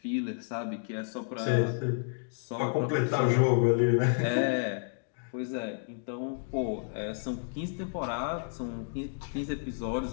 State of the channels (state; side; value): silent; right; digital silence